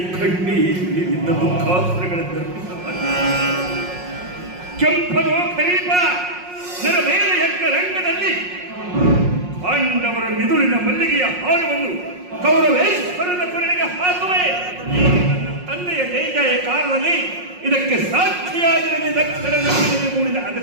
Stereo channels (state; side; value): late; left; 5.5 ms